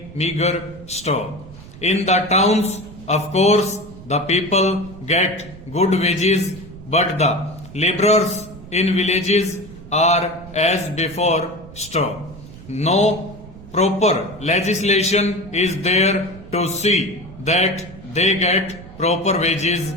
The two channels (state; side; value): noise; right; rumble, 17 dB below the sound